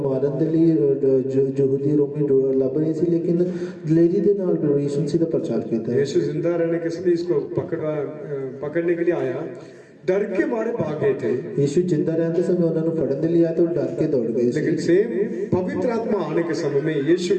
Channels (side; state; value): both; identical; correlation 1.00